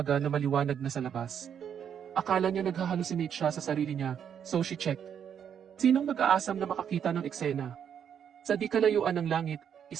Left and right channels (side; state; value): left; quieter; 8.4 dB